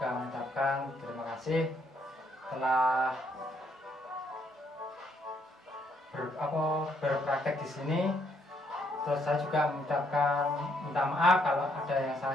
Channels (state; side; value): normal; both; correlation 0.71